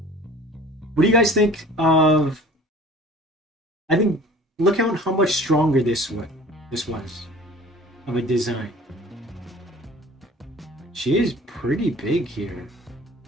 What do you guys think of... I think, look how much stronger this was of a design. She is pretty big here.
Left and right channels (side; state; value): both; normal; correlation 0.45